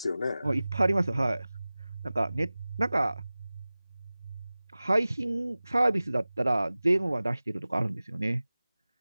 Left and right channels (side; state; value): both; inverted; correlation -0.98